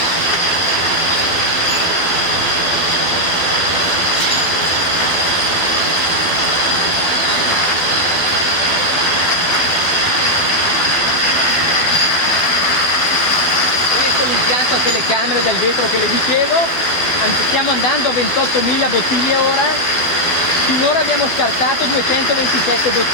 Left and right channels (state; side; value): late; right; 12 ms